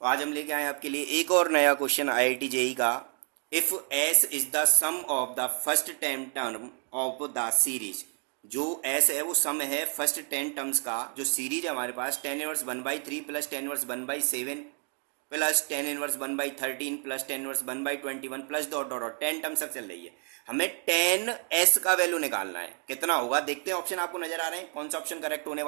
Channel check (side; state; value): left; quieter; 39.3 dB